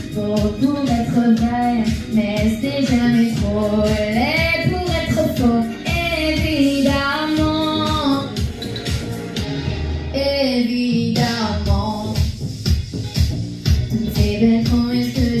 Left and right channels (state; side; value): identical; both; correlation 1.00